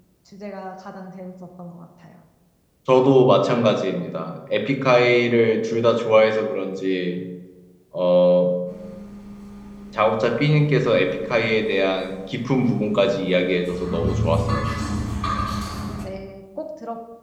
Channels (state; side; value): identical; both; correlation 1.00